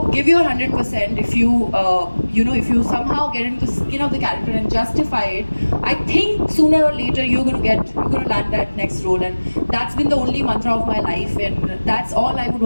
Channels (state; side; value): inverted; both; correlation -1.00